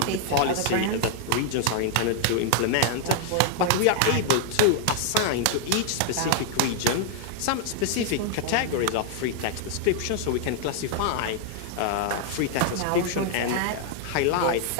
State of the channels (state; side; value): different; both; correlation 0.00